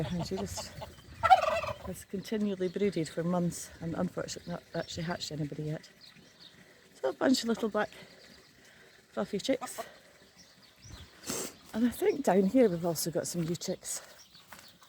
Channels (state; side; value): identical; both; correlation 1.00